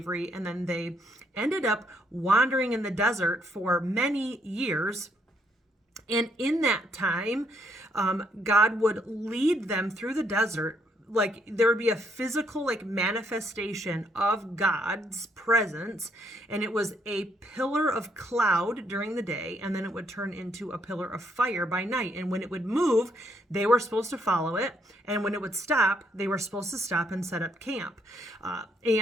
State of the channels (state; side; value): normal; both; correlation 0.71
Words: and then they ended up wandering in the desert for many years. And in that time, God would lead them through the desert. Like, there would be a physical manifestation of God's presence, and it was a pillar of cloud during the day, and then it would turn into a pillar of fire by night. And when it would move, they were supposed to follow it, and when it would stop, they were supposed to stop and set up camp.